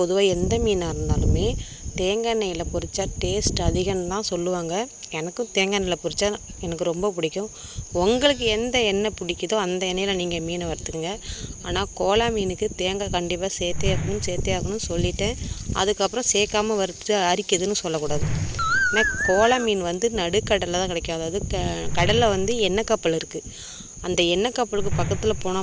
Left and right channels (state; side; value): identical; both; correlation 1.00